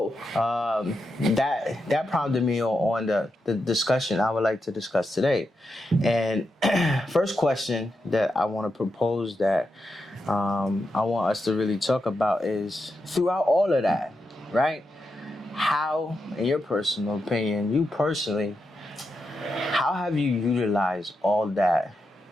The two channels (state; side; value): normal; both; correlation 0.86